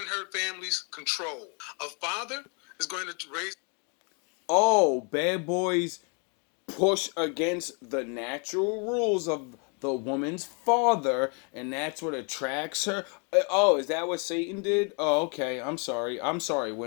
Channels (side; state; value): right; quieter; 36.4 dB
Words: her family's control. A father is going to raise. Oh, bad boys push against the natural rules of the woman's father, and that's what attracts her. Oh, is that what Satan did? Oh, okay. I'm sorry,